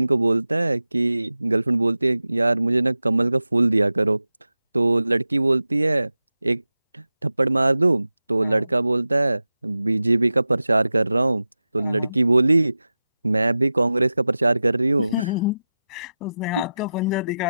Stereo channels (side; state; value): both; inverted; correlation -0.93